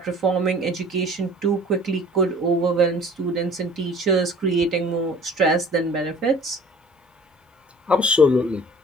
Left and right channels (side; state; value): both; normal; correlation 0.49